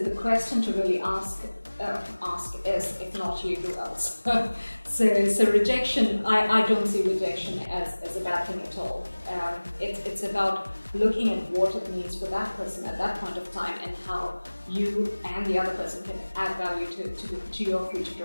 question to really ask is, if not you, who else? So rejection, I don't see rejection as a bad thing at all. It's about looking at what it means for that person at that point of time and how you and the other person can add value to your future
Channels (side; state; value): both; inverted; correlation -1.00